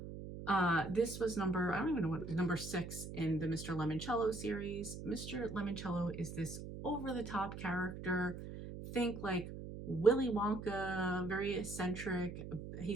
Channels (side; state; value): right; noise; hum, 9 dB below the sound